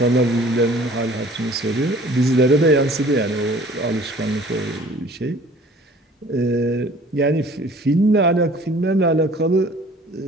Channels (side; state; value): both; normal; correlation 0.50